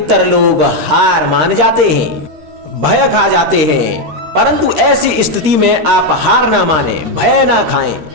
लोग हार मान जाते हैं, भय खा जाते हैं। परंतु ऐसी स्थिति में आप हार ना माने, भय ना खाएं,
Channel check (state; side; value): late; left; 13 ms